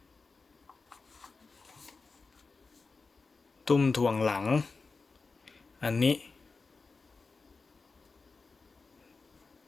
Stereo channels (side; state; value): right; quieter; 4.2 dB